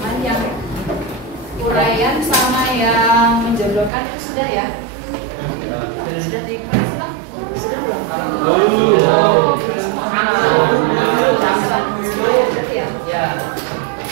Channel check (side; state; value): left; drops out; at 3.9 s